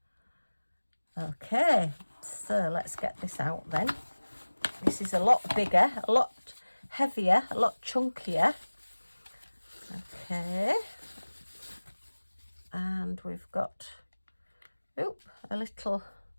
Okay, so let's get this out then. This is a lot bigger, a lot heavier, a lot chunkier. Okay. And we've got, a little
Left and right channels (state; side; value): inverted; both; correlation -1.00